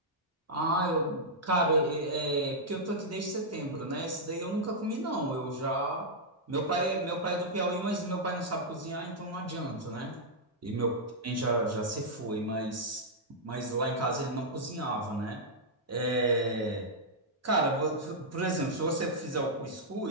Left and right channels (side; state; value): both; normal; correlation -0.07